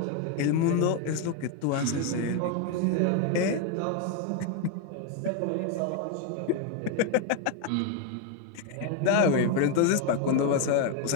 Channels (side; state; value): both; different; correlation 0.01